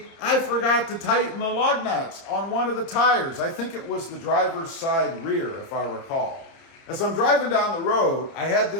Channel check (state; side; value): late; right; 30 ms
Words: I forgot to tighten the lug nuts on one of the tires. I think it was the driver's side rear, if I recall. As I'm driving down the road, I had